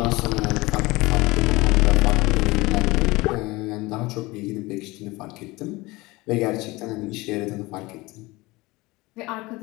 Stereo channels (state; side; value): quieter; right; 21.8 dB